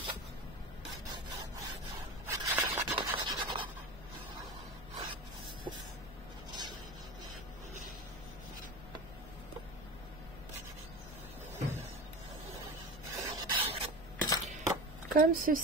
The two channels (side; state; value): left; noise; hum, 15 dB below the sound